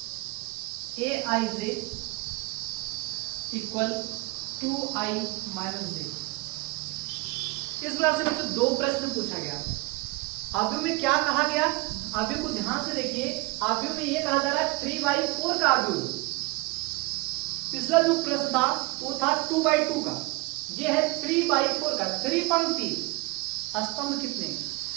aij equal 2i minus j। इस प्रकार से बच्चों दो प्रश्न पूछा गया। आव्यूह में क्या कहा गया, आव्यूह को ध्यान से देखिए। आव्यूह में यह कहा जा रहा है 3/4 का आव्यूह। पिछला जो प्रश्न था वो था 2/2 का, ये है 3/4 का। 3 पंक्ति, स्तंभ कितने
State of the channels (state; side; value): quieter; left; 24.3 dB